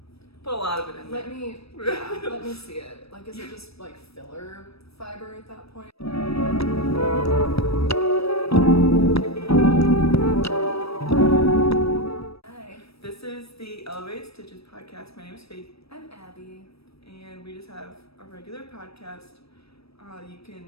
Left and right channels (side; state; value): right; late; 0.78 ms